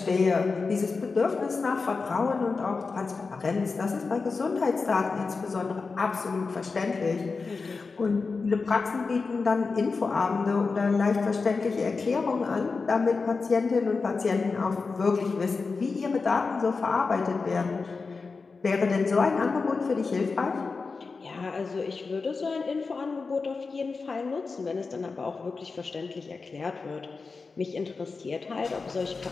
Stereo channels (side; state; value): right; quieter; 4.4 dB